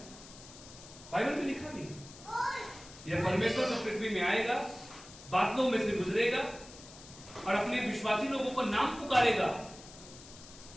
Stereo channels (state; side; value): noise; left; hiss, 18 dB below the sound